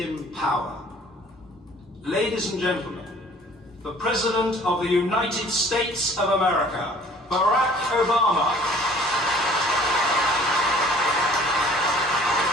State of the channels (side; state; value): both; normal; correlation 0.53